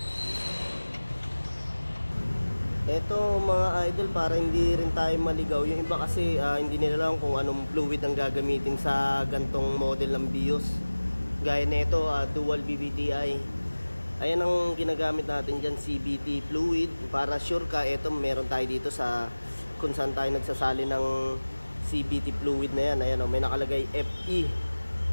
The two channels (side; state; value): both; inverted; correlation -1.00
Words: Ito mga idol, para hindi rin tayo maligaw, yung iba kasi hindi nila alam kung anong fluid ang gagamitin sa gantong model ng BIOS. Gaya nito, dual BBTI. Ayan ang ginagamit natin dyan, CVT fluid. Para sure ka, ito meron tayo dito sa kung saan tayo nagsasali ng CVT fluid na yan. Ayan, may nakalagay FE.